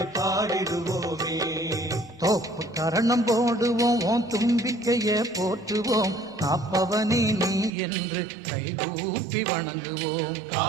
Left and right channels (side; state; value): left; drops out; at 7.7 s